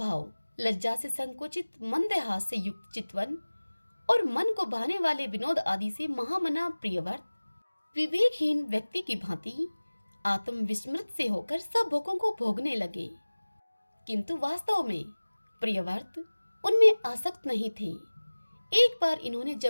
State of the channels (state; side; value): inverted; both; correlation -1.00